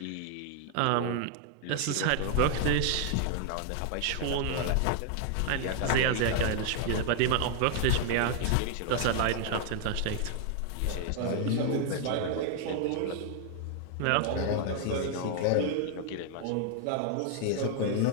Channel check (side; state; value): both; different; correlation 0.00